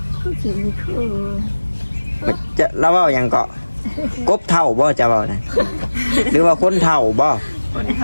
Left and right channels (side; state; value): both; inverted; correlation -1.00